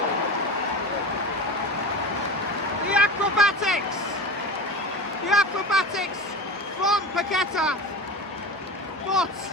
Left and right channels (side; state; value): both; normal; correlation 0.29